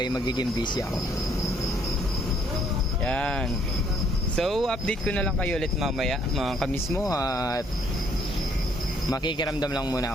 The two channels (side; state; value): both; normal; correlation 0.66